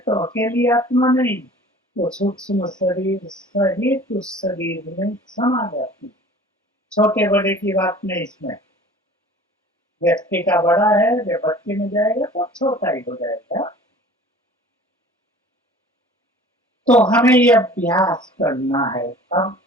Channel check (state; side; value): normal; both; correlation 0.46